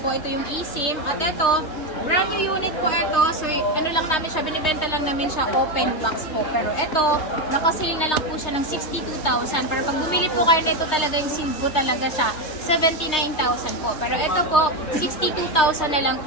Ito yung eSIM. At ito, brand new unit po ito. So, ano lang namin siya, binibenta lang namin siya open box po. Pero ito, nakasale na lang po siya ng 62,000. Pero pag bumili po kayo na ito talaga, yung sealed po talaga siya, 79,000 po. Pero ito po, 62,000 na lang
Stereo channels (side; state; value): right; late; 3.2 ms